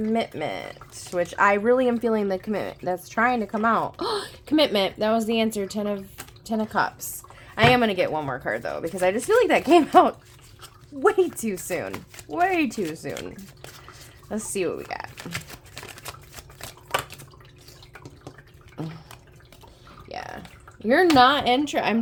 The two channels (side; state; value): both; identical; correlation 1.00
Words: Which I really am feeling the commitment that's trying to come out. Commitment. That was the answer. Ten of Cups. I am going to get one more card, though, because I just feel like that came out way too soon. Way too soon. Let's see what we got. Yeah. You're not